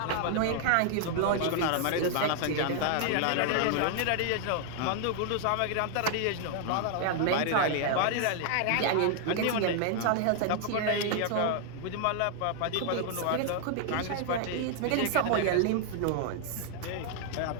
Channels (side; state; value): both; different; correlation 0.00